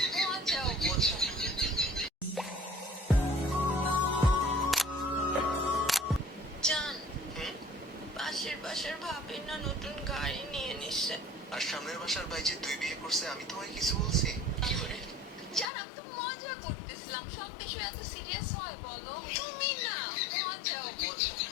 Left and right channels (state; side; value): drops out; right; at 15.7 s